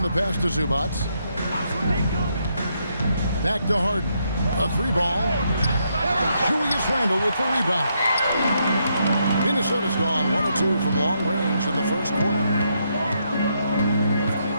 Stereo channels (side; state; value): both; inverted; correlation -0.77